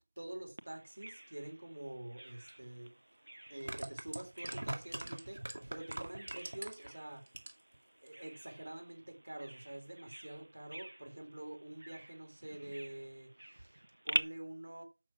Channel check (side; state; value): both; inverted; correlation -1.00